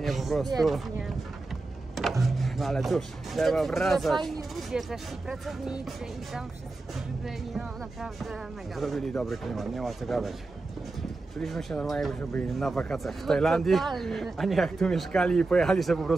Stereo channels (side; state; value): left; quieter; 3.4 dB